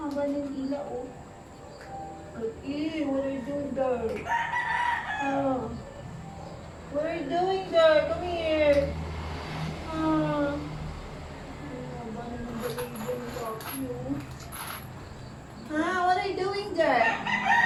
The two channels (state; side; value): identical; both; correlation 1.00